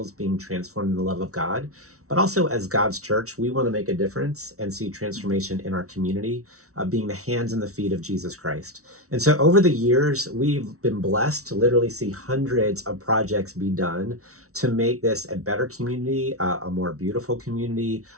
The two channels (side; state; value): left; late; 0.64 ms